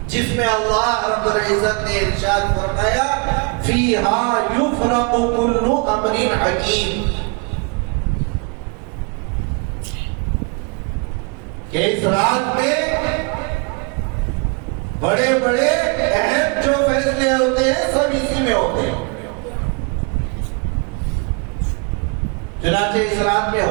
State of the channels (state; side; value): quieter; left; 32.3 dB